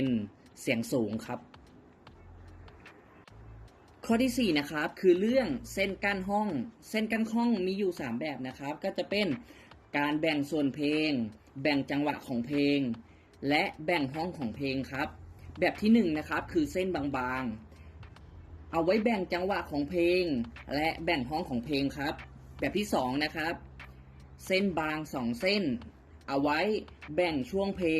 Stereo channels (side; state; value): both; identical; correlation 1.00